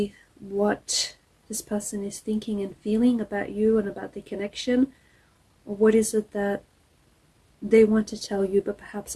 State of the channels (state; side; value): identical; both; correlation 1.00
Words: what this person is thinking and feeling about you and about the connection. Or what is it that they want to tell you but perhaps